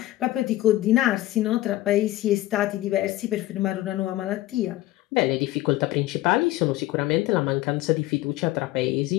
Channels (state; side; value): quieter; right; 16.3 dB